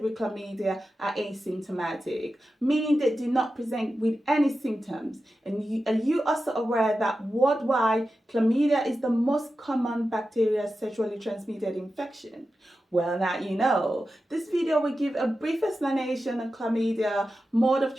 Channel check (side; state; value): both; normal; correlation 0.92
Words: with chlamydia are asymptomatic, meaning they do not present with any symptoms? And are you also aware that worldwide, chlamydia is the most common bacterial sexually transmitted infection? Well, now you know. This video will give a brief explanation on chlamydia, mode of